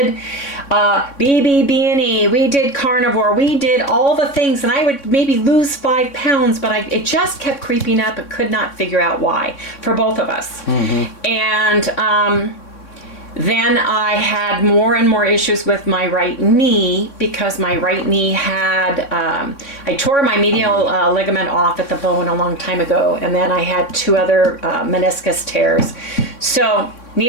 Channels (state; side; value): late; right; 3.6 ms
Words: BBB&E, we did carnivore, we did all the things. And I would maybe lose 5 pounds, but it just kept creeping up and could not figure out why for both of us. And then I had more and more issues with my right knee because my right knee had, I tore my medial ligament off at the bone a long time ago, and then I had 2 other meniscus tears. So